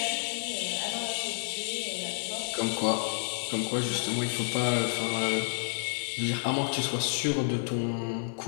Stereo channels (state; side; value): silent; right; 58 dB below the other